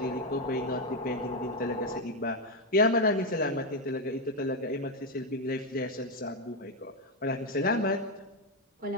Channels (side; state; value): both; normal; correlation 0.05